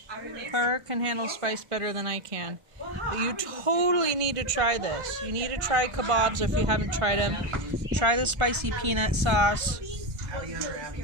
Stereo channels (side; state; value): left; late; 1.4 ms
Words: Her can handle spice better than I can. But you totally need to try this. You need to try kebabs if you haven't tried them. Try the spicy peanut sauce.